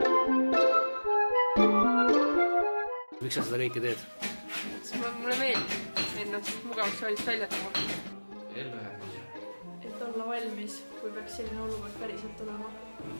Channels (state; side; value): inverted; both; correlation -1.00